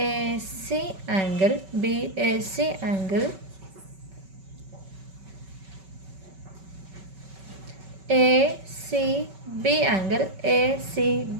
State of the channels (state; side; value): late; left; 5.2 ms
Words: angle, BAC angle, ACB angle,